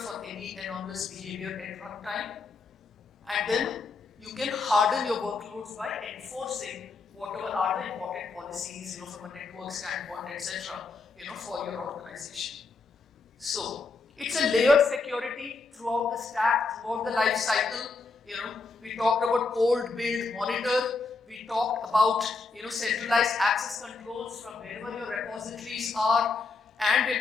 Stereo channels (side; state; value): right; quieter; 4.1 dB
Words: any anomalous behavior at runtime. And then you can harden your workloads by enforcing whatever are the important policies, from a network standpoint, etc., for your organization. So it's a layered security throughout the stack, throughout the life cycle. We talked about cold, build, monitor. We talked about centralized access controls from wherever your repositories are, and we're